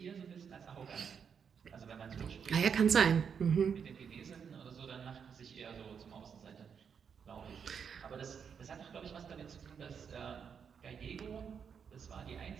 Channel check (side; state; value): left; quieter; 6.9 dB